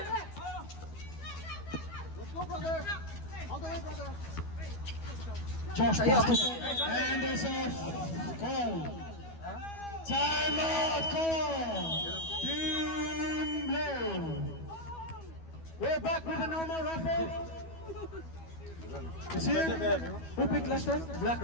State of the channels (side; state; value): right; late; 12 ms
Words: Let's go, brother. All the way, brother. Josh passed it, and there's a call. Timeout call. Team Blue. We're back with a normal raffle. It's here. Who picked last time? Black,